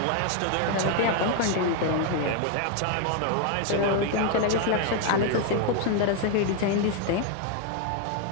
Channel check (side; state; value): both; different; correlation 0.00